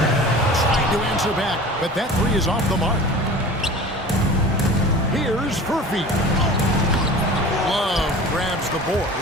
Trying to answer back, but that 3 is off the mark. Here's Furphy. Love grabs the board.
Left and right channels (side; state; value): both; normal; correlation 0.39